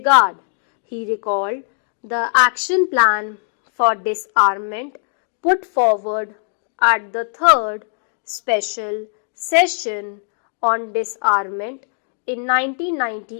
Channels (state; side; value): silent; right; digital silence